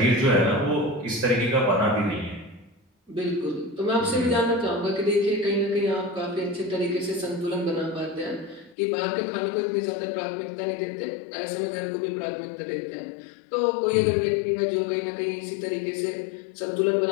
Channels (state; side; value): drops out; right; at 8.8 s